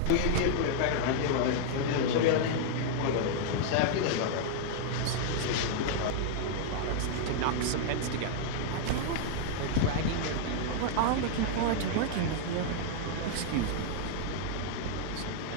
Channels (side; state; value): both; different; correlation -0.01